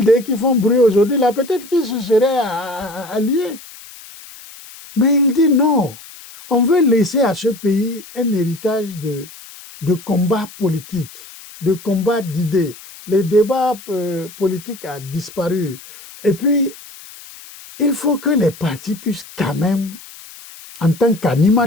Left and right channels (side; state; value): left; noise; hiss, 18 dB below the sound